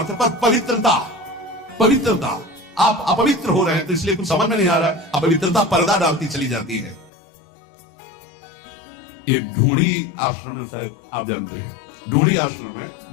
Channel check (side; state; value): right; drops out; at 7.1 s